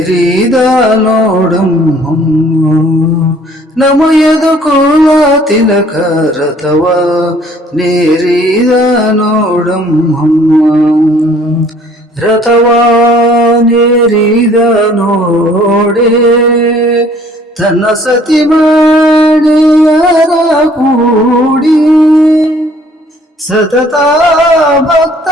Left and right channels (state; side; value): normal; both; correlation 0.57